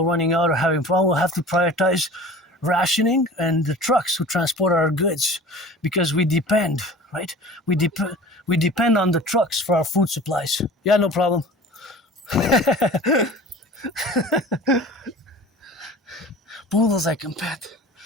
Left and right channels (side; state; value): both; normal; correlation 0.41